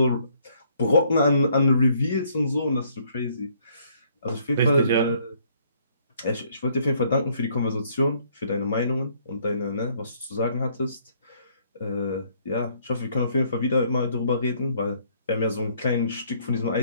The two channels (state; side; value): inverted; both; correlation -0.65